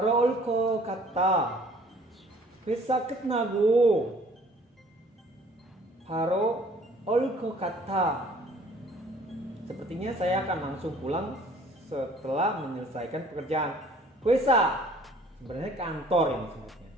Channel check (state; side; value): normal; both; correlation 0.54